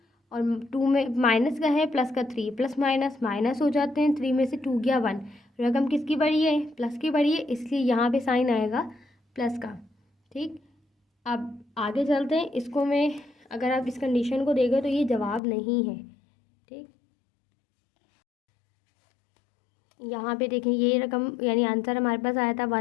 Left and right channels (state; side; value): drops out; right; at 15.4 s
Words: और 2 में माइनस का है, प्लस का 3, प्लस माइनस माइनस हो जाते हैं। 3 में से 2 गया 1। रकम किसकी बड़ी है? प्लस की बड़ी है, इसलिए यहाँ पे साइन आएगा प्लस का। ठीक, अब आगे चलते हैं। इसको में अगर आप इस कंडीशन को देखें तो ये जवाब नहीं है। ठीक, यहाँ पे देखें ये रकम यानी आंसर हमारे पास आया था